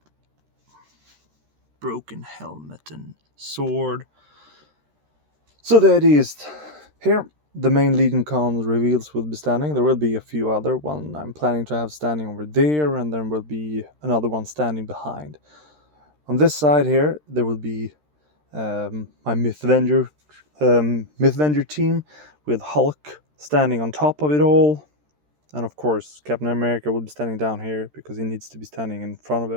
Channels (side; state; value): left; late; 13 ms